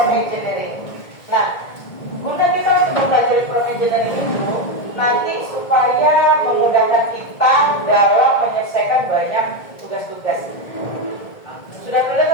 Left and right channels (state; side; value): late; right; 1.7 ms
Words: engineering? Nah, guna kita untuk mempelajari prompt engineering itu nanti supaya memudahkan kita dalam menyelesaikan banyak tugas-tugas. Sudah pernah